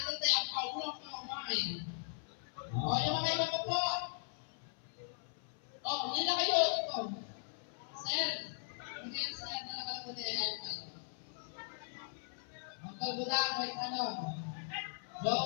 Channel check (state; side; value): silent; right; 52 dB below the other